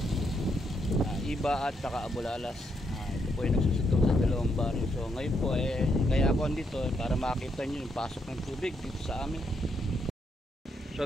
Iba at saka Bulalas. Ito po yung nagsusutong sa dalawang baryo. So ngayon po kaya ako andito para makita nyo yung pasok ng tubig dito sa amin.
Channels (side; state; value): both; normal; correlation 0.77